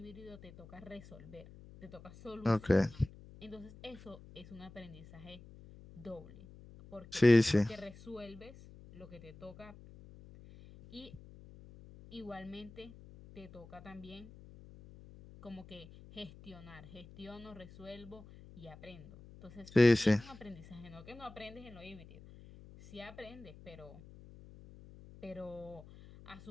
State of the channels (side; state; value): left; noise; hum, 18 dB below the sound